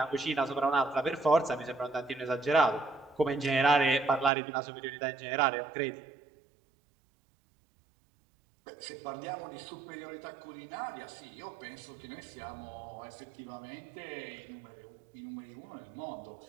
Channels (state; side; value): drops out; left; at 4.3 s